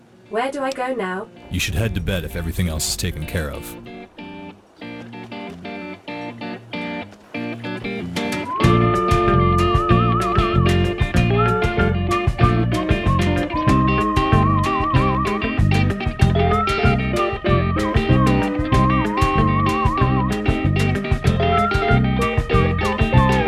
Where do I go now? You should head to bed if everything else is taken care of.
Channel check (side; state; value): both; identical; correlation 1.00